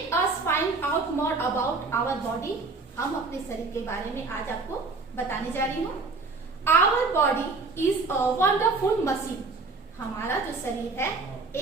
us find out more about our body. हम अपने शरीर के बारे में आज आपको बताने जा रही हूँ। Our body is a wonderful machine. हमारा जो शरीर है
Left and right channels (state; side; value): quieter; left; 3.9 dB